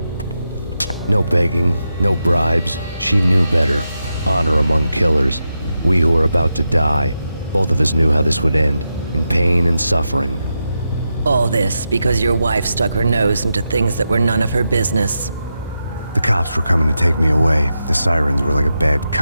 No begging, no bribes. She knew better. Honor among killers. We who were about to die. Both of us knew how this would end, in pain and suffering. All this because your wife stuck her nose into things that were none of her business. The cops were coming to take me away. The sirens were like a bad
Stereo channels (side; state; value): both; inverted; correlation -0.87